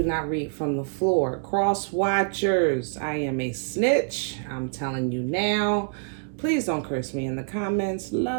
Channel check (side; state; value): left; silent; digital silence